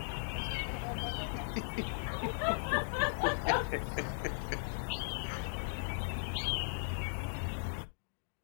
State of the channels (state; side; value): silent; right; digital silence